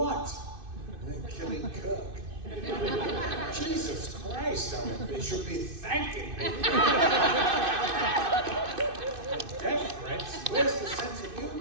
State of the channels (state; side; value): late; left; 2.6 ms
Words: Killing Kirk. Jesus Christ, I went, they should be thanking me. Death threats? Where's the sense of